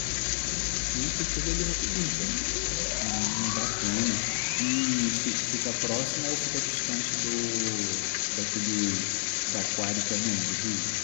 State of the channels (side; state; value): right; silent; digital silence